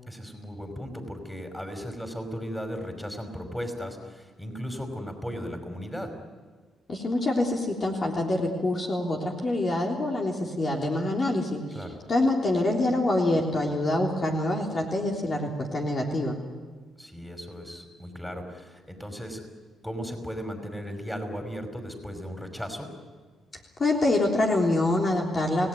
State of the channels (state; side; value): normal; both; correlation 0.82